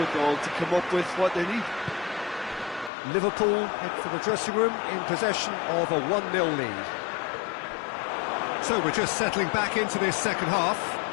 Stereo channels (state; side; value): drops out; right; at 2.9 s